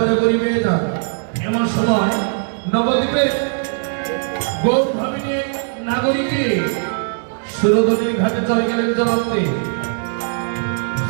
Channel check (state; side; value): silent; left; digital silence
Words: করিবে না। এমন সময় নবদ্বীপে গৌর ভাবিনী নাগরিকে সুরধনীর ঘাটে চলে গেলেন জলান্তে।